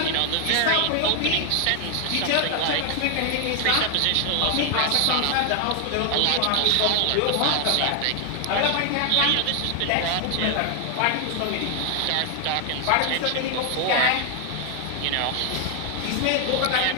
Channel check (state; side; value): different; both; correlation 0.00